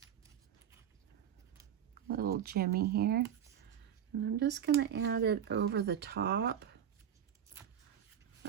Little jimmy here. And I'm just going to add it over the top.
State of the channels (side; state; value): left; quieter; 9.3 dB